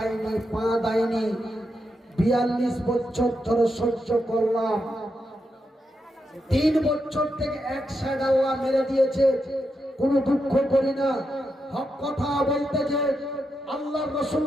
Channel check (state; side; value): normal; both; correlation 0.85